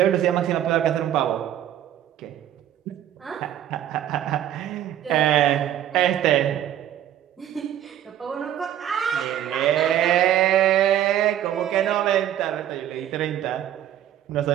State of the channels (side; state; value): left; quieter; 11.3 dB